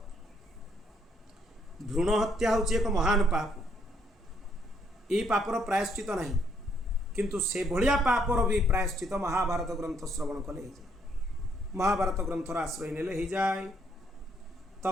भ्रूण हत्या हूँ एक महान पाप। ये पापर प्रायश्चित नहीं, किंतु से भलिया पापर भी प्रायश्चित महाभारत ग्रंथ श्रवण कले। महाभारत ग्रंथर आश्रय नेले हो जाए।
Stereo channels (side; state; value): both; normal; correlation 0.70